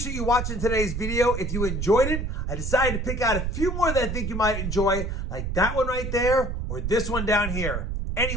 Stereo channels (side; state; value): right; noise; rumble, 3 dB below the sound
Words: you watching today's video. If you enjoyed it, I decided to pick out a few more that I think you might enjoy, like that one right there or this one down here.